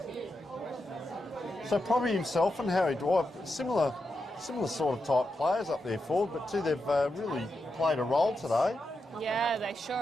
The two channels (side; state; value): both; normal; correlation 0.87